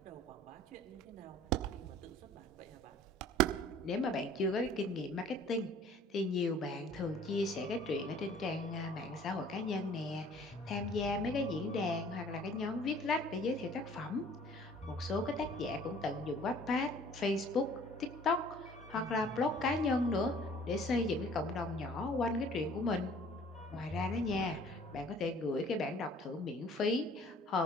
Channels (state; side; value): normal; both; correlation 0.52